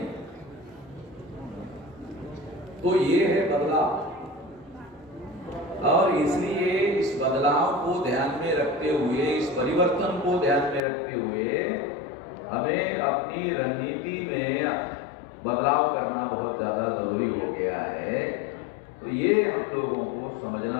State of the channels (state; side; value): drops out; right; at 10.8 s